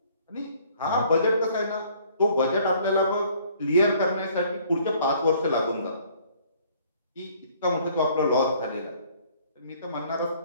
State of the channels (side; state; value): both; inverted; correlation -0.59